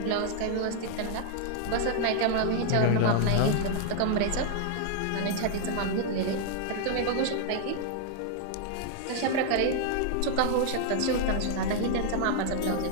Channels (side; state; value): both; different; correlation 0.00